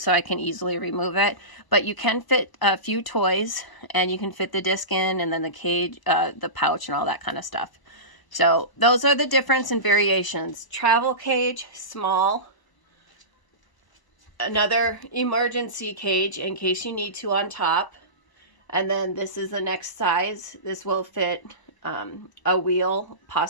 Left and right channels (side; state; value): right; late; 1.0 ms